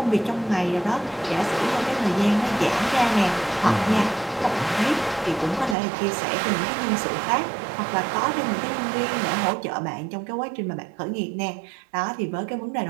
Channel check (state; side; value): drops out; left; at 5.8 s